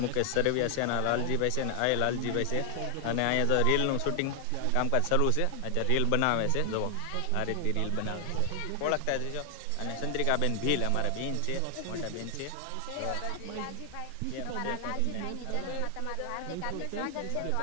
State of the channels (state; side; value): different; both; correlation 0.00